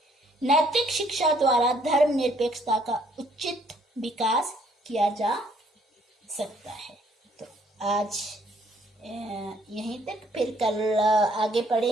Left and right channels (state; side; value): normal; both; correlation 0.65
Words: नैतिक शिक्षा द्वारा धर्म निरपेक्षता का उचित विकास किया जा सकता है। तो आज यहीं तक, फिर कल आगे